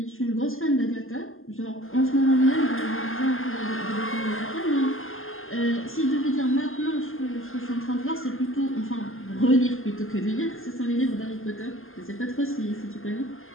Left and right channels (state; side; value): late; right; 0.60 ms